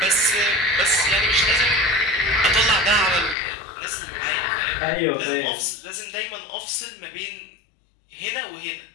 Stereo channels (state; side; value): drops out; right; at 3.4 s